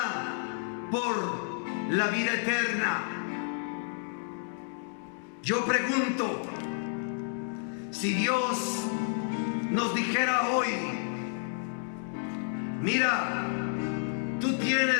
por la vida eterna. Yo pregunto, si Dios nos dijera hoy: mira, tú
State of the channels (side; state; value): right; silent; 57 dB below the other